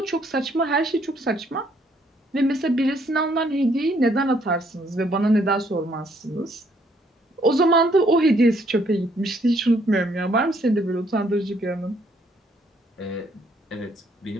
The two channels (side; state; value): both; normal; correlation 0.68